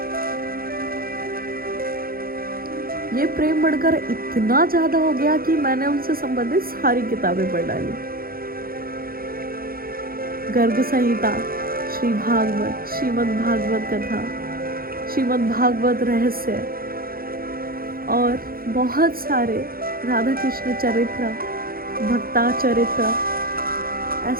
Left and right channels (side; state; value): left; late; 0.43 ms